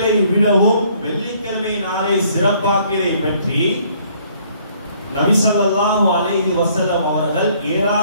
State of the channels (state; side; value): inverted; both; correlation -0.62